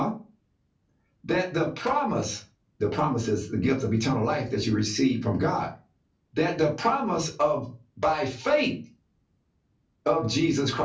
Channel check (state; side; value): identical; both; correlation 1.00